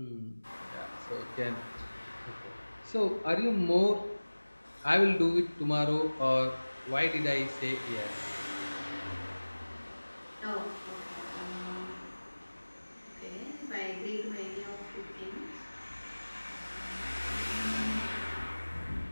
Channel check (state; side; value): inverted; both; correlation -1.00